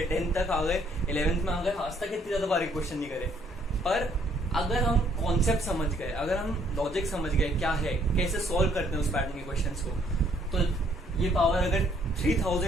10th तक आ गए, 11th में आ गए, आज तक इतनी ज्यादा पावर के क्वेश्चन नहीं करे। पर अगर हम कॉन्सेप्ट समझ गए, अगर हम लॉजिक समझ गए क्या है, कैसे सॉल्व करते हैं उस पैटर्न के क्वेश्चंस को, तो ये पावर अगर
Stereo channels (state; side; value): normal; both; correlation 0.66